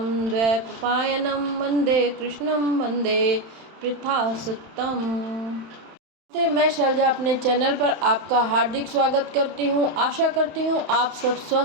द्वैपायनं वंदे कृष्णं वंदे पृथासुतम्। मैं शैलजा अपने चैनल पर आपका हार्दिक स्वागत करती हूँ। आशा करती हूँ आप सब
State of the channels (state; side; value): late; left; 31 ms